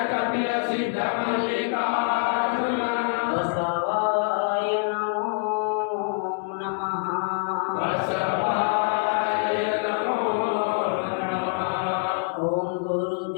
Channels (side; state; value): right; silent; 60 dB below the other